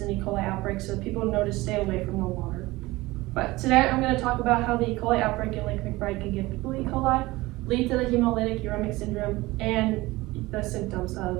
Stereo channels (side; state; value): left; quieter; 20.0 dB